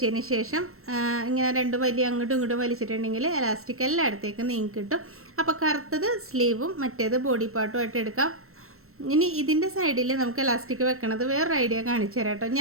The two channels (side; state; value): left; late; 0.63 ms